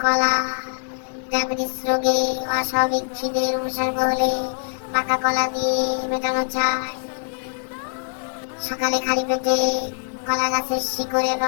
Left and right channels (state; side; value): silent; right; digital silence